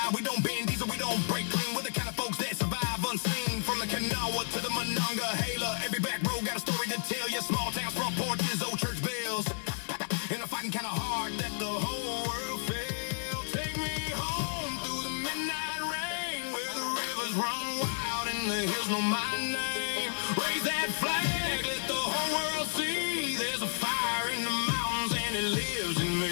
We don't bend these or we don't break clean. We're the kind of folks that survive unseen. From the Kanawha to the Monongahela, every back row got a story to tell you. Small towns, front porches, old church bells. And I'm fighting kinda hard that the whole world failed. Take me home through the midnight rain, where the rivers run wild and the hills know my name. Raise that flag, let the whole world see. There's a fire in the mountains and it lives in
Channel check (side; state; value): right; silent; digital silence